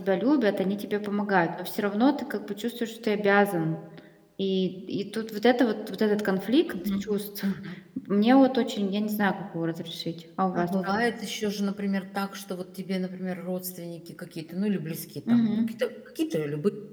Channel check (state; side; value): identical; both; correlation 1.00